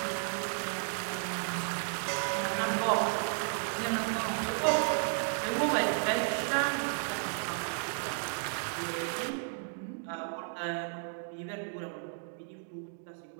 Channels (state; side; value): silent; left; digital silence